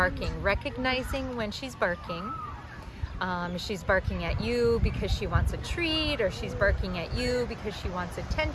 recognizing when she's barking. If she's barking at you because she wants a treat, or she's barking at you because she wants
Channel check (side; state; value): both; identical; correlation 1.00